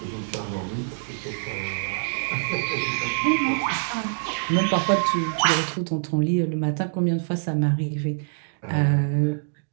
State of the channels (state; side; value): silent; left; digital silence